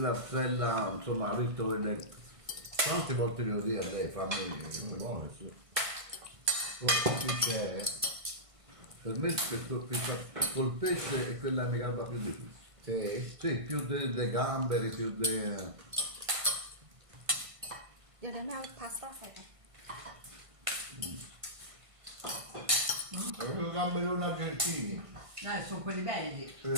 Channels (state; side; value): late; left; 1.5 ms